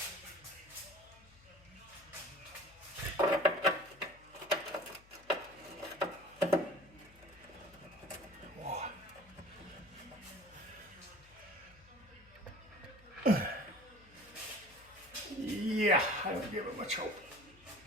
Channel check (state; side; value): noise; left; hum, 25 dB below the sound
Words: Yeah, I don't give it much hope.